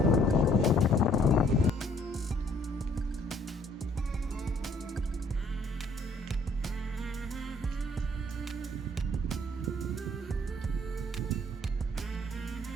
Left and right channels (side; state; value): both; normal; correlation 0.62